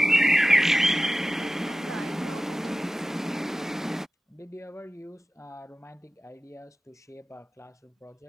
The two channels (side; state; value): both; normal; correlation 0.95